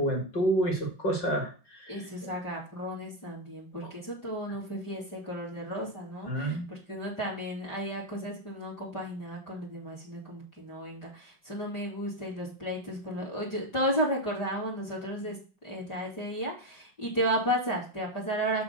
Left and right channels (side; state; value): right; late; 5.0 ms